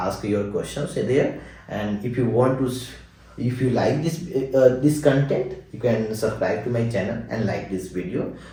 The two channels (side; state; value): both; identical; correlation 1.00